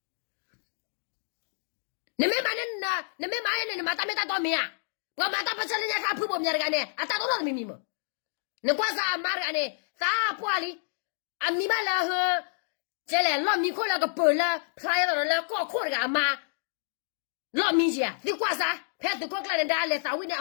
你们买那，你们买那，你马大没大多没啊？我马大不成人家看婆婆面的干呢，啊，大多少秘密么？你光啥买的干呢？啥不里？啊，你买了和这来老米可那个包了，拍到了搞苦的个妈，老米姐，你光啥？拍是搞个人家来啥为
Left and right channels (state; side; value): silent; right; digital silence